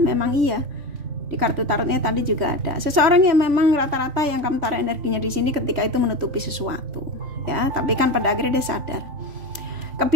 memang iya. Di kartu tarotnya tadi juga ada seseorang yang memang rata-rata yang kamu taruh energinya di sini ketika itu menutupi sesuatu ya, tapi kan pada akhirnya dia sadar.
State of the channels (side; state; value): left; late; 3.4 ms